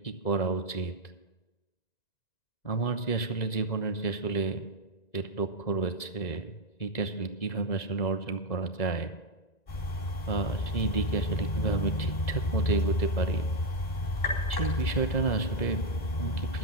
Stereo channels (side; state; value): right; late; 1.9 ms